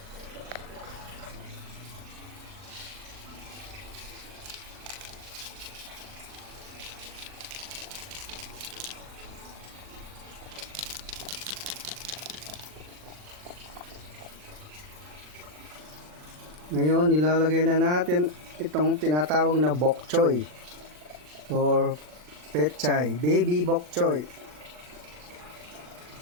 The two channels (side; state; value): left; late; 40 ms